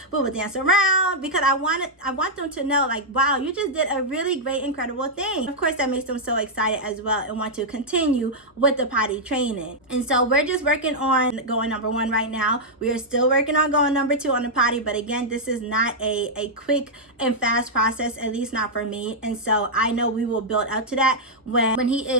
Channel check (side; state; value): both; normal; correlation -0.05